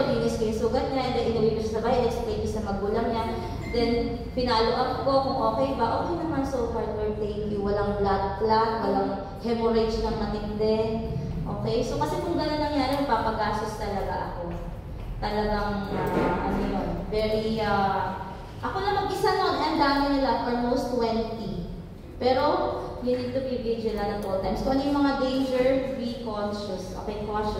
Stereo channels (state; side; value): identical; both; correlation 1.00